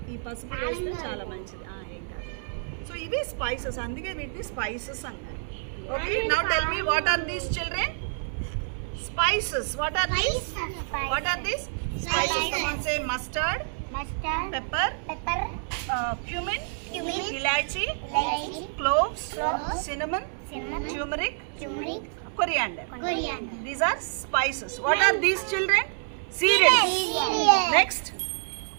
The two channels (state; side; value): silent; left; 60 dB below the other